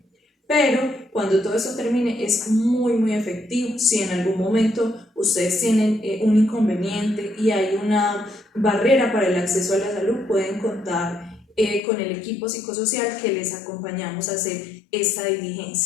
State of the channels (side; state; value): right; drops out; at 11.8 s